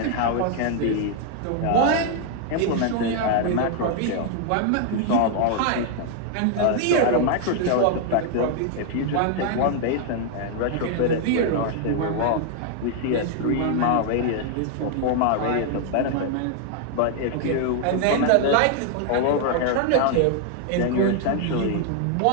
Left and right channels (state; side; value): different; both; correlation 0.00